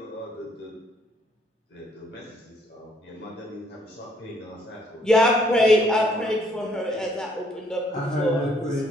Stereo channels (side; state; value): both; normal; correlation 0.67